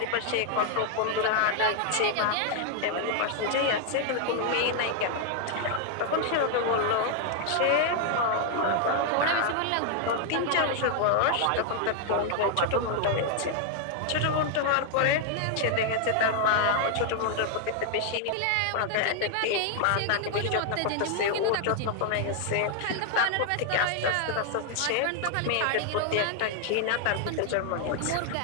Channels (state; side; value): different; both; correlation 0.00